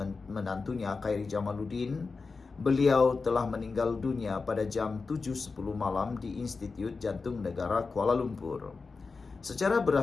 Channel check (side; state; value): right; quieter; 4.4 dB